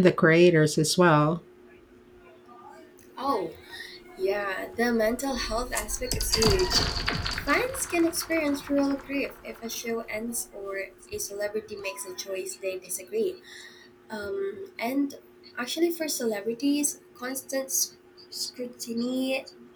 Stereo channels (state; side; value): identical; both; correlation 1.00